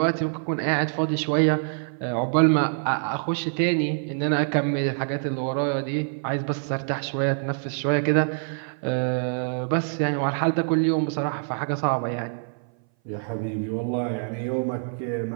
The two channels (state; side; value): silent; left; 58 dB below the other